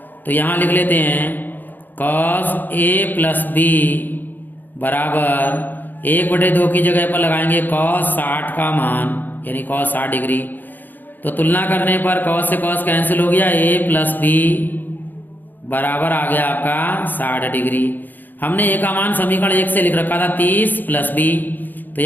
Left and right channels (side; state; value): right; late; 0.088 ms